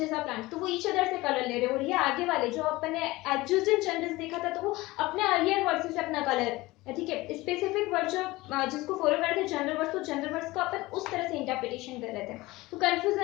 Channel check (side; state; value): right; quieter; 20.1 dB